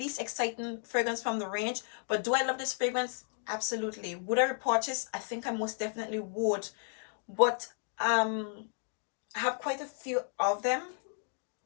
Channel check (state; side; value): silent; right; 56 dB below the other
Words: exciting fragrance from the range. But do I love this fragrance? Absolutely. Would I repurchase? I think I most definitely would. But I have quite a few of them.